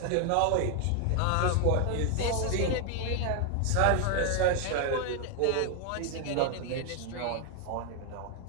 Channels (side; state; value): both; different; correlation 0.01